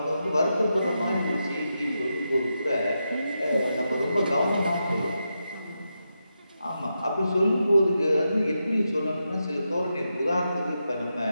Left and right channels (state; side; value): inverted; both; correlation -0.87